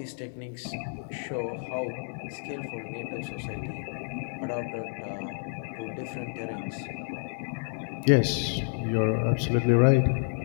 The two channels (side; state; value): right; silent; 58 dB below the other